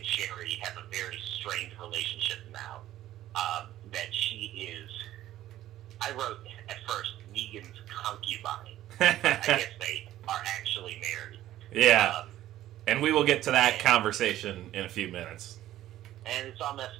Sherry have a very strained relationship now. That she is, I wrote at first, Negan's concubine. I guess they are actually married. Yeah. And we will get to that conversation in a few minutes. And it's all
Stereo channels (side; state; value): left; quieter; 13.6 dB